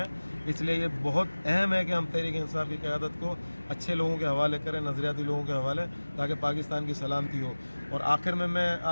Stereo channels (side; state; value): both; inverted; correlation -1.00